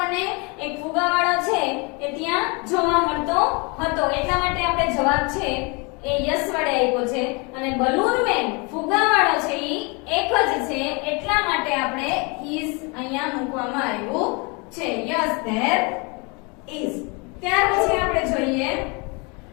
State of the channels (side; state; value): right; quieter; 30.4 dB